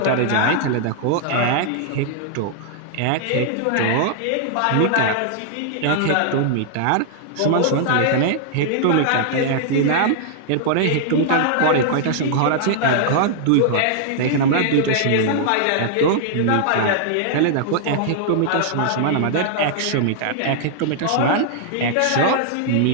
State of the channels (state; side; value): different; both; correlation -0.01